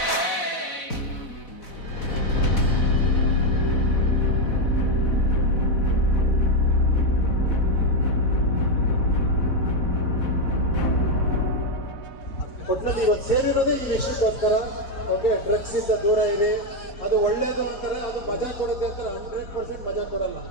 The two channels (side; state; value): right; late; 4.1 ms